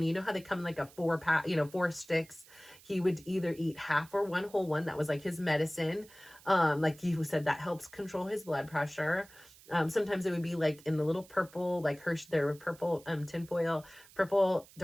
you know how they come in like a 4-pack, 4 sticks. He would either eat half or one whole one. That was like his medicine. Like he said that helps control his blood pressure. Sometimes it would be like in the little purple, like Hershey, there were purple tinfoil, purple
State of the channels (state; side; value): noise; right; hiss, 23 dB below the sound